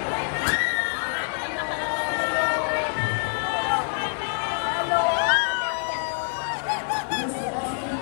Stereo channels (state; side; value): silent; right; digital silence